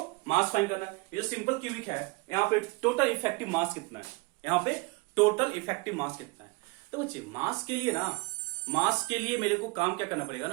मास फाइंड करना है। ये जो सिंपल क्यूबिक है यहाँ पे टोटल इफेक्टिव मास कितना है, यहाँ पे टोटल इफेक्टिव मास कितना है। तो बच्चे मास के लिए ना, मास के लिए मेरे को काम क्या करना पड़ेगा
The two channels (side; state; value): left; quieter; 26.4 dB